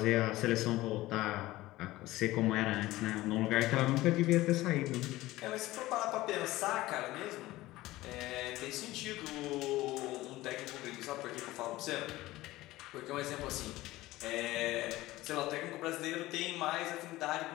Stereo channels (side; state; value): right; quieter; 17.7 dB